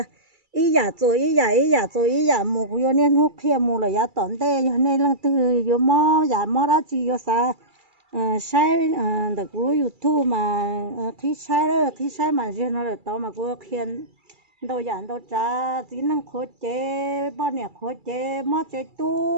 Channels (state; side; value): late; left; 2.3 ms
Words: ý giả mua cú yêu nên hút kia mua là giá tổn tệ cho nên là từ yêu mò giả mò đó chỉ yêu sa sai được cú yêu thu mà khi sai mà chứ nó là to mà cú khiên đâu giảm đâu trả chỉ năng khối chế bao nhiêu khối chế mò chế